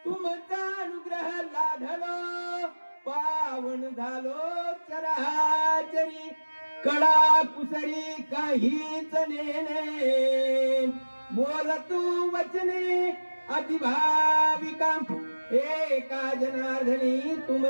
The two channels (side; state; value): both; inverted; correlation -1.00